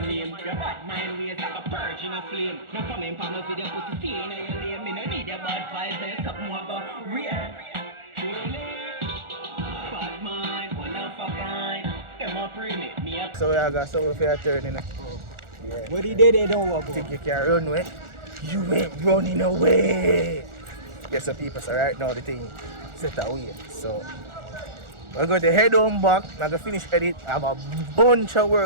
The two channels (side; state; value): left; late; 1.4 ms